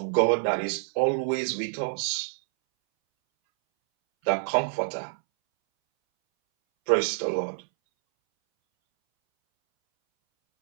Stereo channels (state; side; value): silent; left; 61 dB below the other